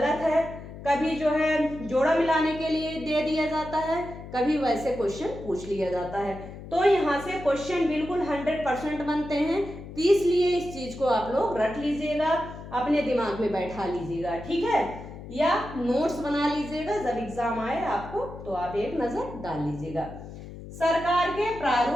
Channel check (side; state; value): left; noise; hum, 13 dB below the sound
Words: है, कभी जो है जोड़ा मिलाने के लिए दे दिया जाता है, कभी वैसे क्वेश्चन पूछ लिया जाता है। तो यहाँ से क्वेश्चन बिल्कुल 100% बनते हैं, तो इसलिए इस चीज को आप लोग रट लीजिएगा, अपने दिमाग में बैठा लीजिएगा, ठीक है, या नोट्स बना लीजिएगा। जब एग्जाम आए आपको तो आप एक नजर डाल लीजिएगा। सरकार के